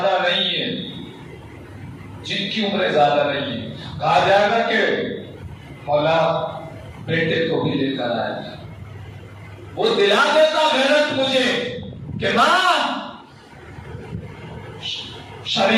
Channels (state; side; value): identical; both; correlation 1.00